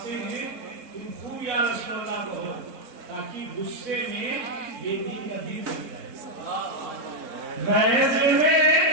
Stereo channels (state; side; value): late; left; 3.8 ms